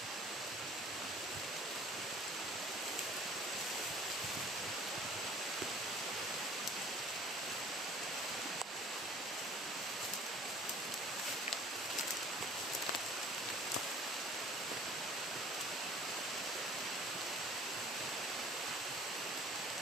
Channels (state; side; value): normal; both; correlation 0.49